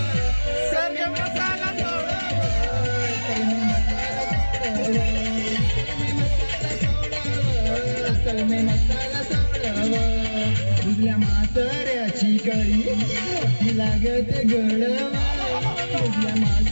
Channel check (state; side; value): inverted; both; correlation -1.00